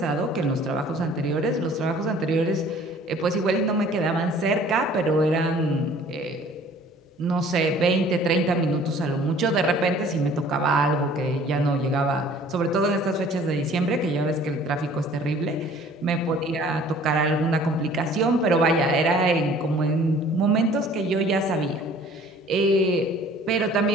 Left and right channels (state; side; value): normal; both; correlation 0.52